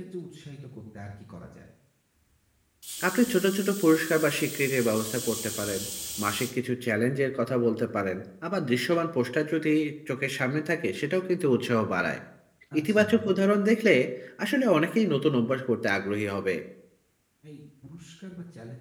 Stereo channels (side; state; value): both; identical; correlation 1.00